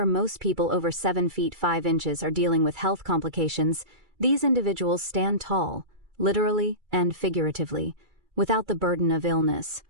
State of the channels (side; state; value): left; late; 2.3 ms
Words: most people over 7 feet 5 inches are dealing with health complications, these individuals stand tall, literally and figuratively, without the burden of illness.